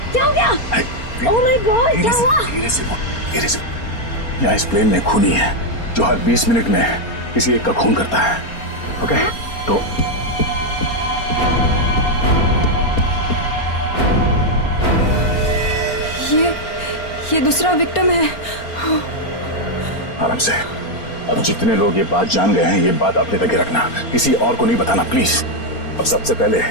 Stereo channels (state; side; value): late; right; 4.3 ms